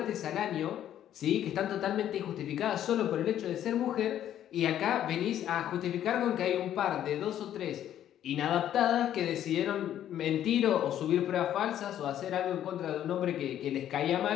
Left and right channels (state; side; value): quieter; right; 11.1 dB